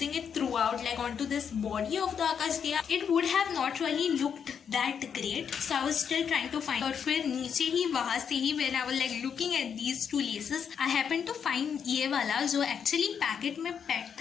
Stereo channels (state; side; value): quieter; right; 7.3 dB